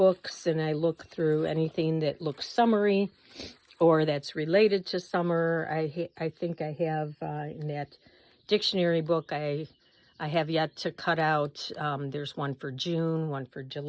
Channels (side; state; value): both; identical; correlation 1.00